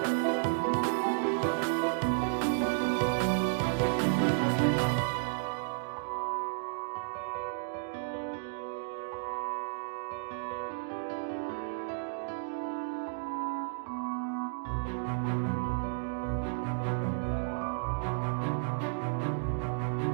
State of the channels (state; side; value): silent; left; digital silence